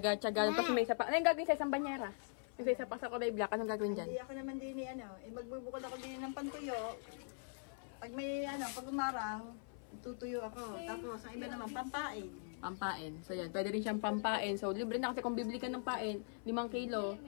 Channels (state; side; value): silent; right; 50 dB below the other